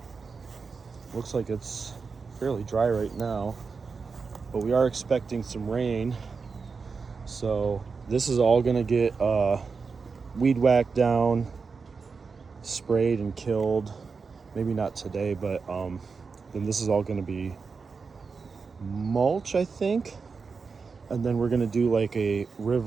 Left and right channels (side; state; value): left; quieter; 5.0 dB